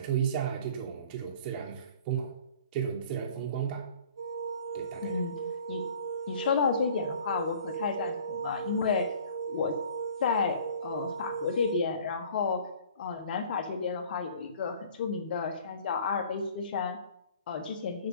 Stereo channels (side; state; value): both; inverted; correlation -0.49